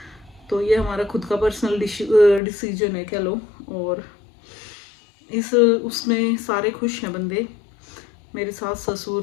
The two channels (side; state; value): right; drops out; at 2.4 s